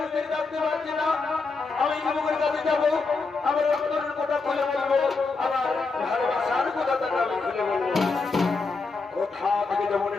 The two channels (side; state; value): right; quieter; 4.2 dB